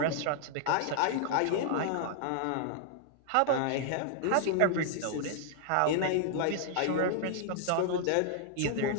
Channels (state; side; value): different; both; correlation -0.01